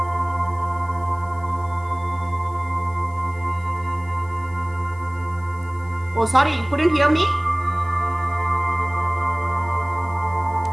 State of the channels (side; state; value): left; noise; hiss, 28 dB below the sound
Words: Oh, sorry, you couldn't hear me?